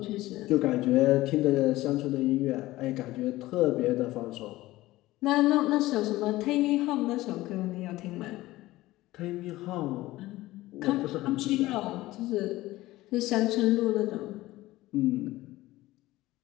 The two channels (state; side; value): quieter; right; 17.6 dB